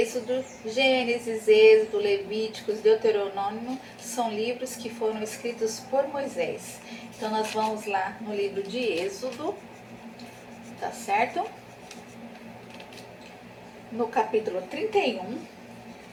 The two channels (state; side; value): identical; both; correlation 1.00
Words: Gênesis, Êxodo, Levíticos, Deuteronômio são livros que foram escritos por Moisés. Então nós vamos lá no livro de Êxodo, tá certo? No capítulo 31,